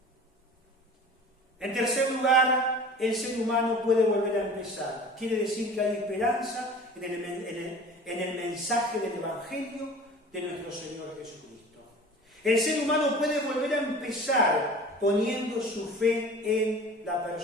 En tercer lugar, el ser humano puede volver a empezar. Quiere decir que hay esperanza en el mensaje del Evangelio de nuestro Señor Jesucristo. El ser humano puede volver a empezar poniendo su fe en la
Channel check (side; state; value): both; normal; correlation 0.41